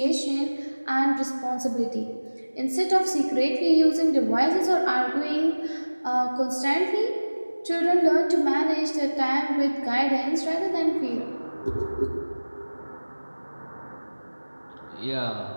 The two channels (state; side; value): inverted; both; correlation -1.00